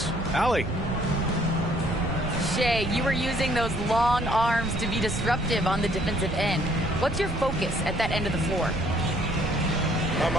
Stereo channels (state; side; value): noise; right; rumble, 6 dB below the sound